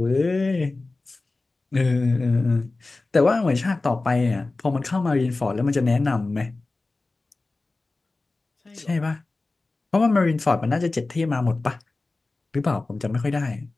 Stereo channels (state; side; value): quieter; right; 3.3 dB